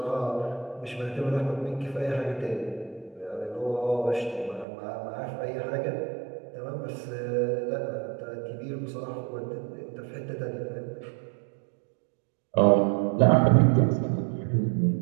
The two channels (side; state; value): left; drops out; at 4.7 s